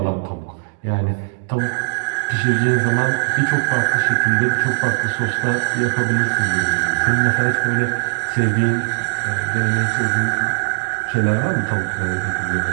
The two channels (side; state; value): left; silent; digital silence